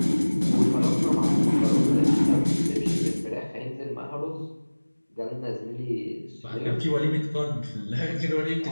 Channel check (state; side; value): inverted; both; correlation -1.00